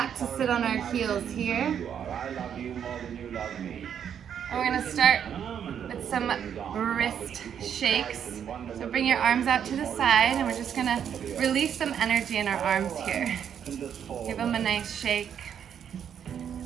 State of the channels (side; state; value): left; quieter; 8.5 dB